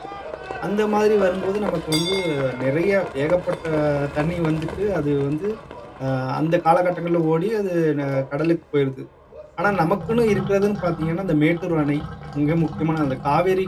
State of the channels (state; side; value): identical; both; correlation 1.00